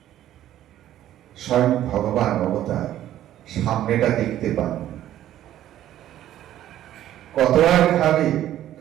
স্বয়ং ভগবান অবতার সামনেটা দেখতে পান, কত আর খাবে,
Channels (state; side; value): quieter; left; 12.5 dB